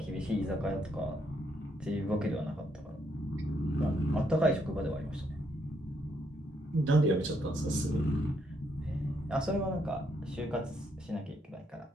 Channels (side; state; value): both; normal; correlation 0.74